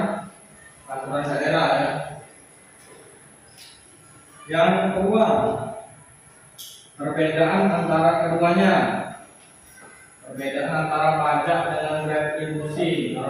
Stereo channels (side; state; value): both; identical; correlation 1.00